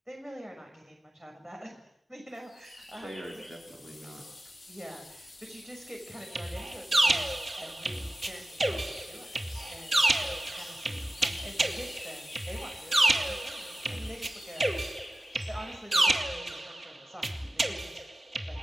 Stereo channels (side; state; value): both; normal; correlation 0.95